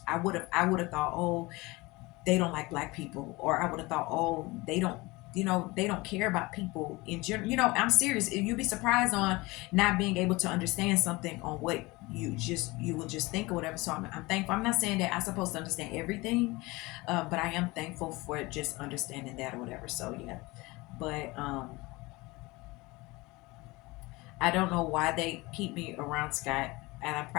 would have thought, oh, they don't like black people, or I would have thought, oh, they don't care about people in general. I'm serious. You'd be surprised on not being able to understand something on what you will just think or whatever. So I'm thankful. I'm not saying that I'm supposed to understand everything, but I am thankful for just understanding that or whatever. So yeah, but I don't know why they keep me around Scott, and I'm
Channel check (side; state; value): right; quieter; 22.6 dB